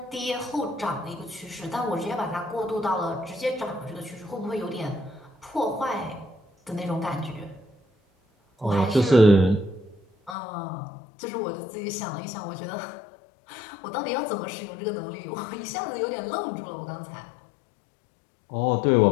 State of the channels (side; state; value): right; drops out; at 10.4 s